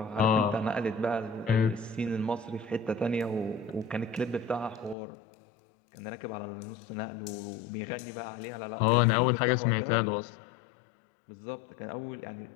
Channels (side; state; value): right; drops out; at 5.0 s